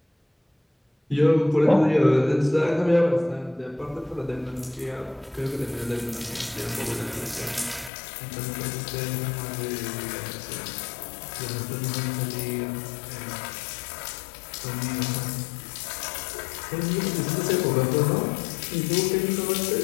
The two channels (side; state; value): right; drops out; at 7.9 s